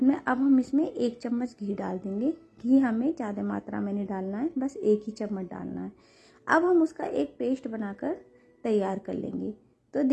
में अब हम इसमें 1 चम्मच घी डाल देंगे। घी हमें ज़्यादा मात्रा में नहीं डालना है, बस 1 ही चम्मच डालना है। अब हम उसका एक पेस्ट बनाकर तैयार कर लेंगे। तो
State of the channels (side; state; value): both; identical; correlation 1.00